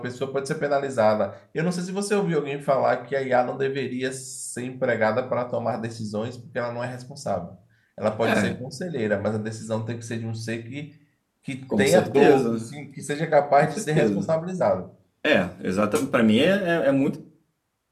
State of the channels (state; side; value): identical; both; correlation 1.00